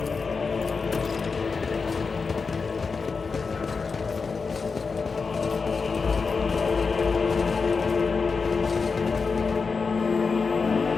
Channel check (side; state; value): right; quieter; 4.8 dB